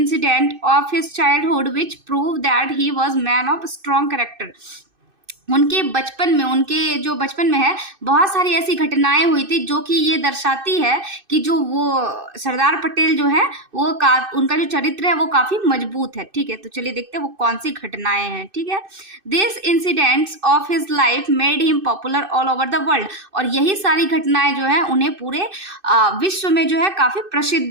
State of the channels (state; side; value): late; left; 2.6 ms